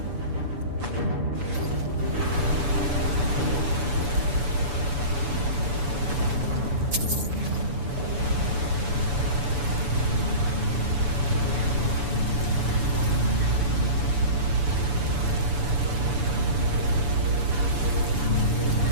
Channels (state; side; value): late; left; 7.0 ms